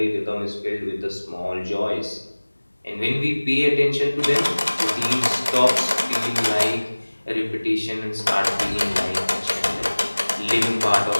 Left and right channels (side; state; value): both; inverted; correlation -1.00